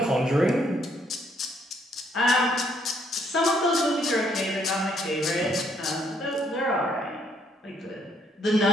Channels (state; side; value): normal; both; correlation 0.69